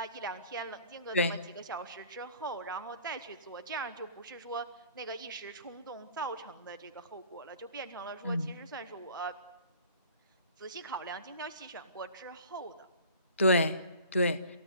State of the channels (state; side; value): inverted; both; correlation -0.48